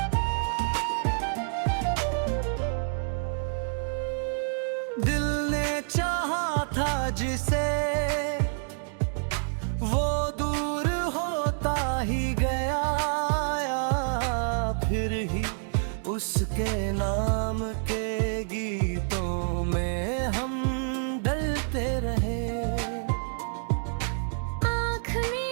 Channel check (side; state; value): left; silent; digital silence